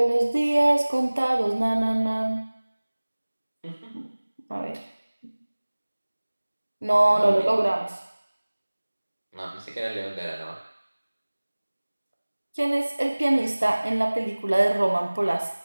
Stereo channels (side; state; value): both; inverted; correlation -1.00